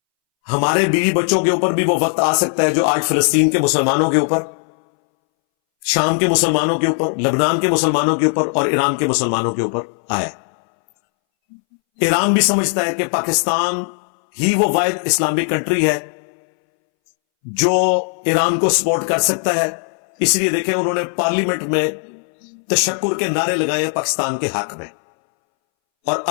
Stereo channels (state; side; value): silent; right; 64 dB below the other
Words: ہمارے بیوی بچوں کے اوپر بھی وہ وقت آ سکتا ہے جو آج فلسطین کے مسلمانوں کے اوپر, شام کے مسلمانوں کے اوپر, لبنان کے مسلمانوں کے اوپر اور ایران کے مسلمانوں کے اوپر آیا. ایران بھی سمجھتا ہے کہ پاکستان ہی وہ واحد اسلامک کنٹری ہے جو ایران کو سپورٹ کر سکتا ہے. اس لیے دیکھیں انہوں نے پارلیمنٹ میں تشکر کے نعرے لگائے ہیں پاکستان کے حق میں. اور